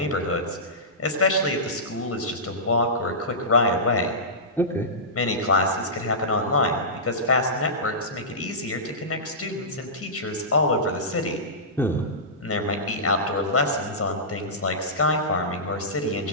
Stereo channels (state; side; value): normal; both; correlation -0.18